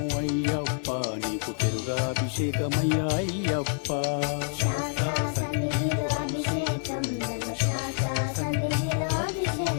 అయ్యప్ప, నీకు పెరుగాభిషేకమయ్యా అయ్యప్ప. శాస్త్ర సన్నిధిలో అభిషేకం, ధర్మశాస్త్ర సన్నిధిలో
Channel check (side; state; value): right; silent; 56 dB below the other